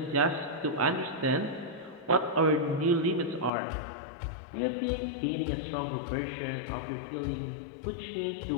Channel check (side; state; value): right; drops out; at 3.5 s